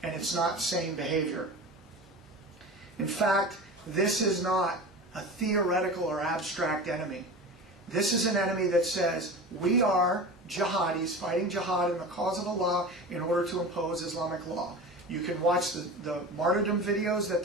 And it's not sane behavior. In fact, this is not a theoretical or abstract enemy. This is an enemy that says, we are jihadis fighting jihad in the cause of Allah in order to impose Islamic law. You can watch the martyrdom videos that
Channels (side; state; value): both; normal; correlation 0.31